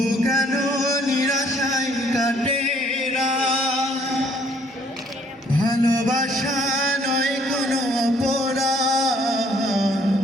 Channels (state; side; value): normal; both; correlation 0.63